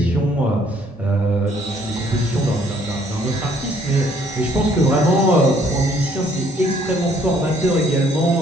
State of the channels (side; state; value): both; normal; correlation 0.63